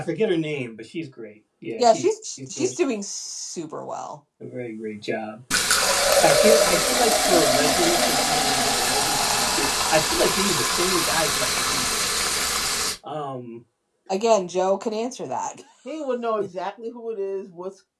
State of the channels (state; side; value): identical; both; correlation 1.00